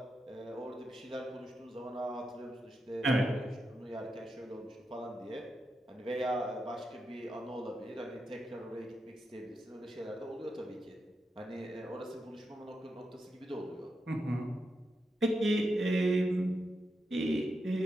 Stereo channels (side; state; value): both; normal; correlation 0.86